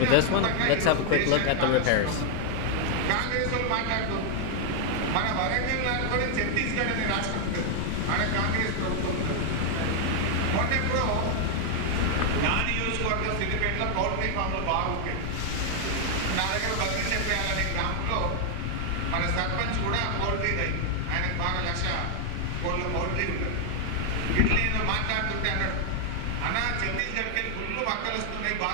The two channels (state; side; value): different; both; correlation 0.00